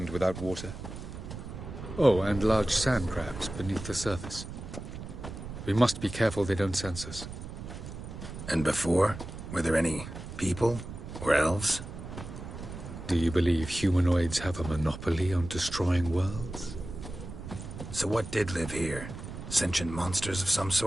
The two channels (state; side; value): noise; right; rumble, 10 dB below the sound